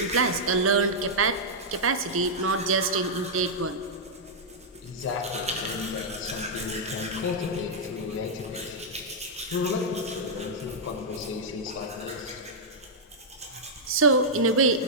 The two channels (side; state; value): both; normal; correlation -0.08